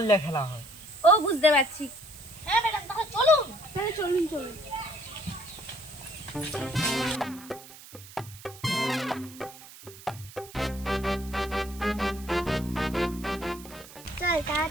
দিয়ে খেলা হয়। ও বুঝতে পারছি। হ্যাঁ ম্যাডাম, তাহলে চলুন। তাহলে চলুন। চল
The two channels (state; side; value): noise; right; hiss, 18 dB below the sound